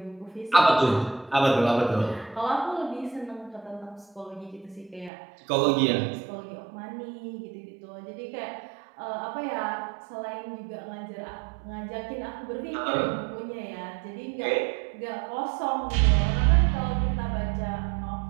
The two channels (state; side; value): drops out; left; at 5.1 s